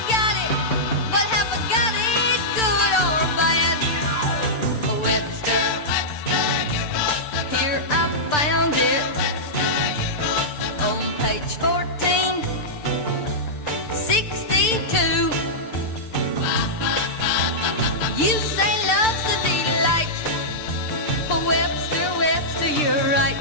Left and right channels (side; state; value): right; late; 6.7 ms